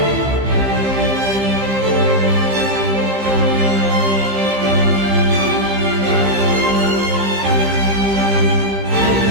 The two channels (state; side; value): late; left; 15 ms